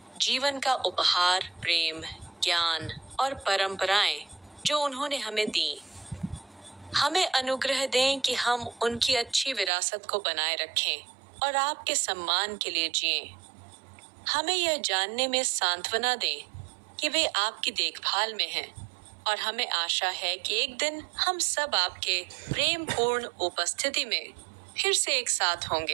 जीवन का उपहार, प्रेम, ज्ञान और परंपराएं जो उन्होंने हमें दी। हमें अनुग्रह दें कि हम उनकी अच्छी विरासत को बनाए रखें और आपके सम्मान के लिए जिएं। हमें यह जानने में सांत्वना दें कि वे आपकी देखभाल में हैं, और हमें आशा है कि एक दिन हम सब आपके प्रेम पूर्ण उपस्थिति में फिर से एक साथ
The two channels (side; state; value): left; drops out; at 9.7 s